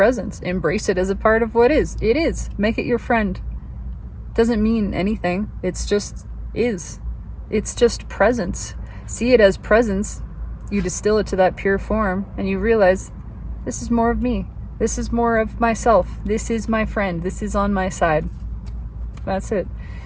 Embrace it as a part of what is. It is. Make it your friend. Doesn't mean anything. It's just is. It's just presence. See it as presence. You distill it to that pure form and you realize this is more of me. This is more of myself. This is my friend. This is on my side. That's it.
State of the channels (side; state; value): both; identical; correlation 1.00